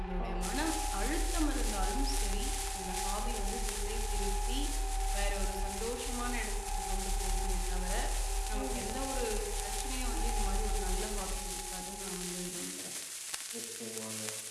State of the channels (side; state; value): both; identical; correlation 1.00